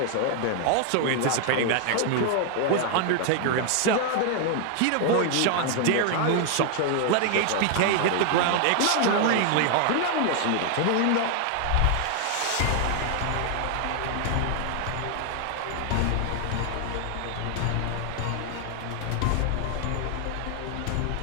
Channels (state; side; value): different; both; correlation 0.00